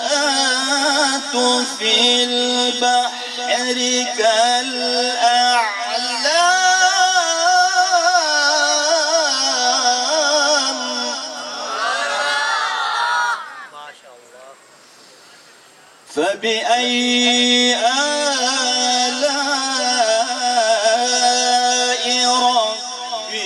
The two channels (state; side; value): identical; both; correlation 1.00